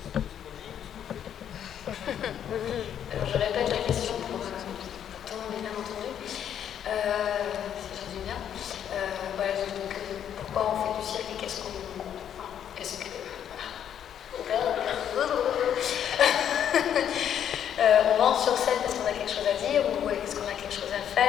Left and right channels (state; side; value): quieter; right; 9.4 dB